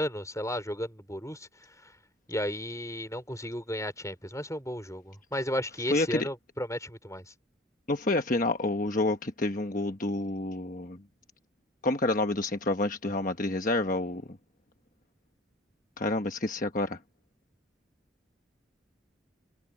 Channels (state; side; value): normal; both; correlation 0.42